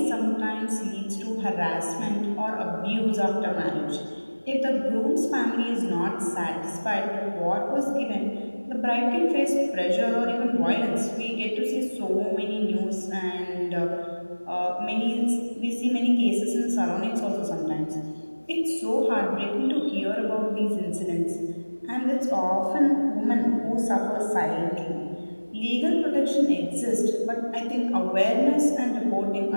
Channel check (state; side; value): inverted; both; correlation -1.00